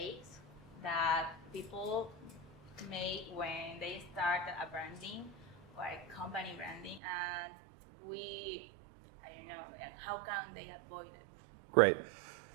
that people make when they start a branding or a company branding, and and how can they avoid it? Great.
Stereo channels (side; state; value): left; drops out; at 7.0 s